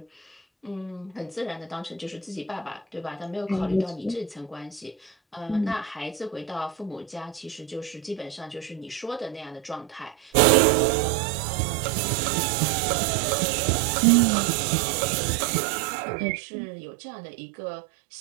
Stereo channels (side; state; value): left; drops out; at 10.3 s